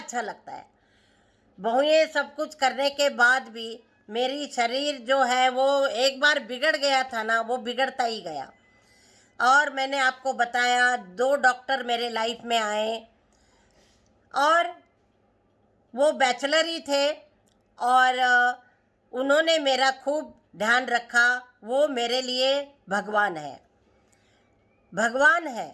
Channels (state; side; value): identical; both; correlation 1.00